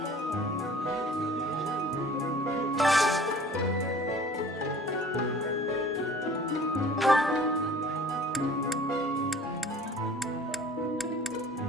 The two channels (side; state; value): both; normal; correlation 0.48